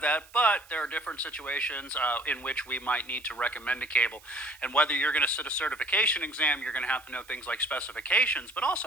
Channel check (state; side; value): noise; right; hiss, 24 dB below the sound